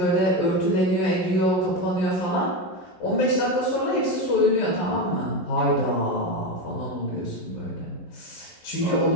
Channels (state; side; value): late; right; 11 ms